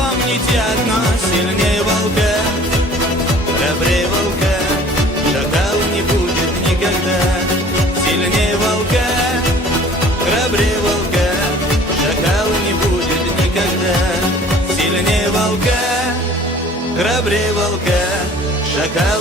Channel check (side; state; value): both; normal; correlation 0.50